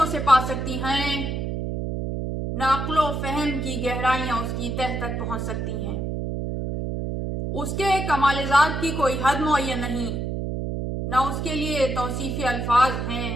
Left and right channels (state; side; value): noise; right; hum, 3 dB below the sound